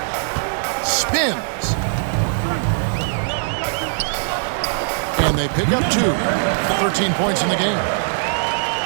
Spins. And they pick up 2. 13 points in the game.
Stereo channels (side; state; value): left; silent; digital silence